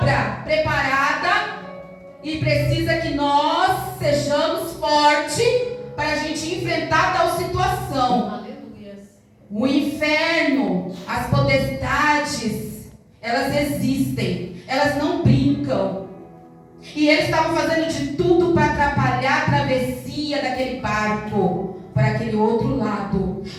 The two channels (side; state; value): both; identical; correlation 1.00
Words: preparada e precisa que nós sejamos fortes para a gente enfrentar tal situação. Aleluia. O inferno, as potestades, elas existem, elas não brincam. E eles estavam fazendo de tudo para atrapalhar a travessia daquele barco para aquele outro lado,